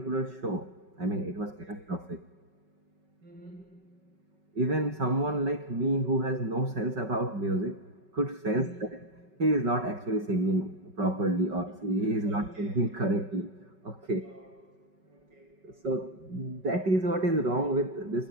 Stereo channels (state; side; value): late; left; 5.3 ms